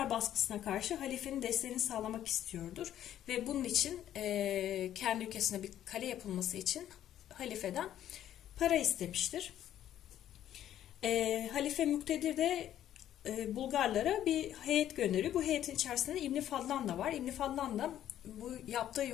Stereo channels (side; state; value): right; quieter; 11.5 dB